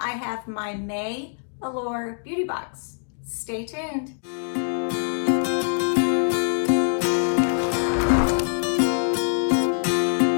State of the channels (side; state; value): right; silent; digital silence